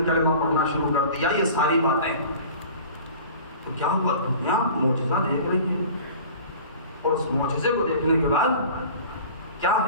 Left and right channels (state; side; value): inverted; both; correlation -0.42